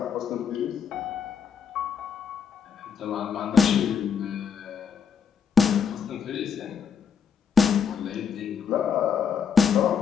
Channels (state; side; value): quieter; right; 6.6 dB